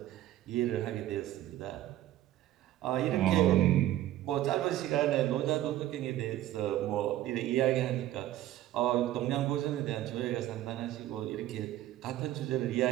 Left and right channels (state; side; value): quieter; left; 13.8 dB